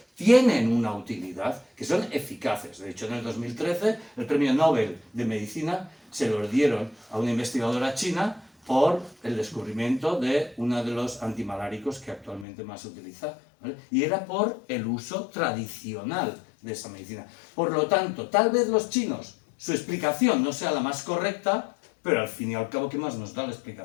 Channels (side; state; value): right; drops out; at 12.5 s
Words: tienen una utilidad, que son eficaces. De hecho, en el 2013 el premio Nobel de Medicina se lo dieron a una investigadora china por el descubrimiento de uno de los antimaláricos que actualmente más se utiliza, ¿vale? Y era por el uso tradicional de esa medicina. Por lo tanto, tal vez los chinos, su explicación no sea la más correcta, pero al fin y al cabo, ¿qué más nos da la